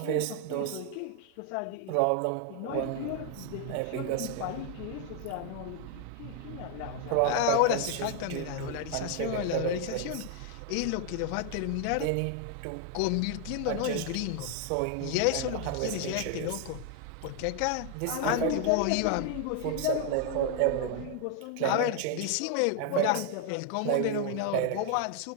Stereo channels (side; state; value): both; different; correlation 0.00